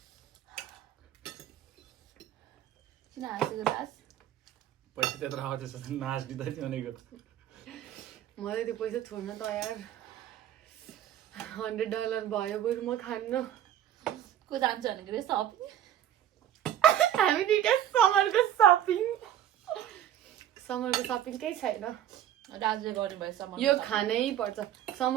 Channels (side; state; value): left; quieter; 11.1 dB